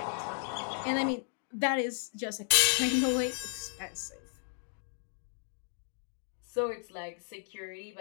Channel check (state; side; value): silent; right; digital silence